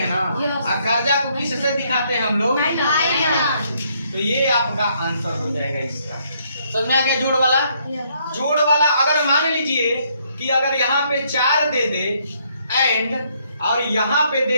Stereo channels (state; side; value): inverted; both; correlation -0.70